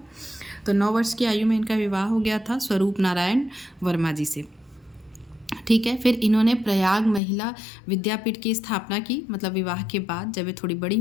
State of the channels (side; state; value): right; drops out; at 7.2 s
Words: तो 9 वर्ष की आयु में इनका विवाह हो गया था स्वरूप नारायण वर्मा जी से, ठीक है। फिर इन्होंने प्रयाग महिला विद्यापीठ की स्थापना की। मतलब विवाह के बाद जब ये थोड़ी बड़ी